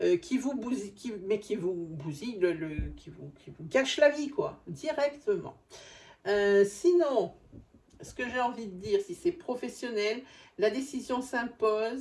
qui vous bousille, qui vous bousille, qui vous gâche la vie, quoi, directement. Sinon, ce que j'ai envie de dire, si c'est professionnel, la décision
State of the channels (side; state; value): both; identical; correlation 1.00